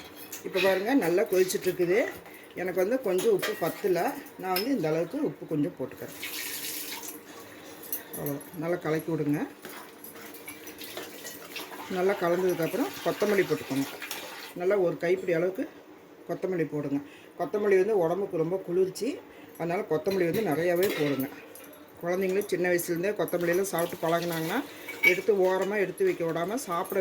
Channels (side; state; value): both; identical; correlation 1.00